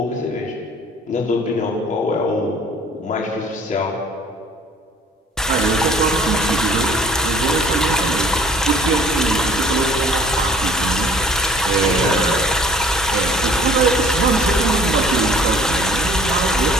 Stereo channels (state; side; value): normal; both; correlation 0.53